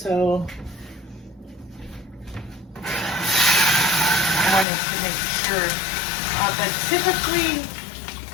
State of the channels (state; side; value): drops out; right; at 4.7 s